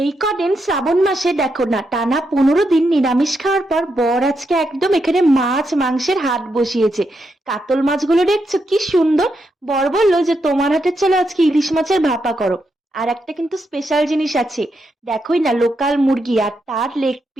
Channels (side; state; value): both; normal; correlation 0.82